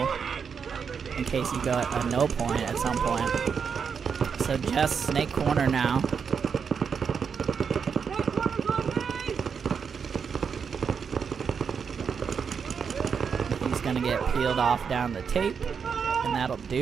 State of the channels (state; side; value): quieter; left; 6.4 dB